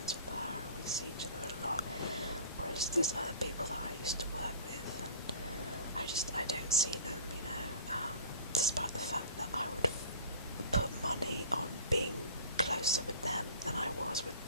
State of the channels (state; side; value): inverted; both; correlation -0.43